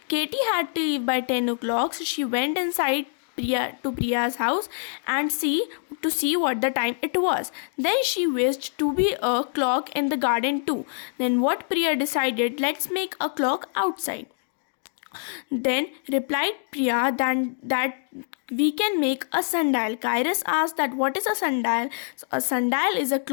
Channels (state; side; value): silent; right; digital silence